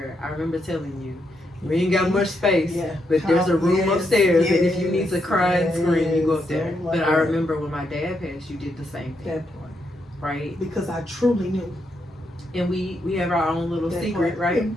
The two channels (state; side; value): normal; both; correlation 0.80